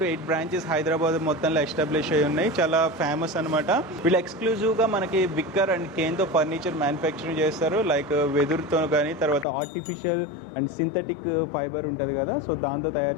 to 8 బ్రాంచెస్ హైదరాబాద్ మొత్తంలో ఎస్టాబ్లిష్ అయి ఉన్నాయి. చాలా ఫేమస్ అనమాట. వీళ్ళు ఎక్స్క్లూజివ్గా మనకి విక్కర్ అండ్ కేన్తో ఫర్నిచర్ మ్యానుఫ్యాక్చరింగ్ చేస్తారు. లైక్ వెదురుతో కానీ, తర్వాత ఆర్టిఫిషియల్ అండ్ సింథటిక్ ఫైబర్ ఉంటుంది కదా, సో దాంతో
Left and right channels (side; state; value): right; drops out; at 9.5 s